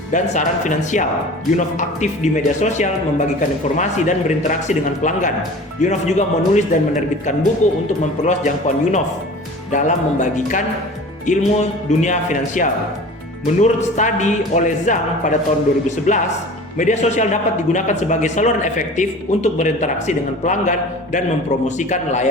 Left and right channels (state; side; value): normal; both; correlation 0.40